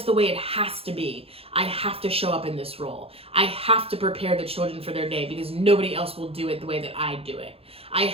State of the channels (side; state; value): left; late; 0.28 ms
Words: the way it has to be. I have to show up in this role. I have to prepare the children for their day because nobody else will do it the way that I do it. I